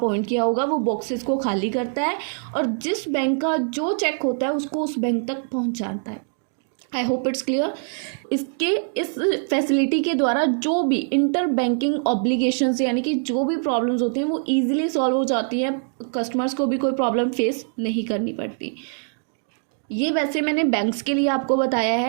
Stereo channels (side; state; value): left; silent; 59 dB below the other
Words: किया होगा, वो बॉक्सेस को खाली करता है और जिस बैंक का जो चेक होता है उसको उस बैंक तक पहुँचाता है। I hope it's clear. इस फैसिलिटी के द्वारा जो भी इंटर बैंकिंग ऑब्लिगेशंस, यानी कि जो भी प्रॉब्लम्स होती हैं, वो ईजिली सॉल्व हो जाती हैं, कस्टमर्स को भी कोई प्रॉब्लम फेस नहीं करनी पड़ती। ये वैसे मैंने बैंक्स के लिए आपको बताया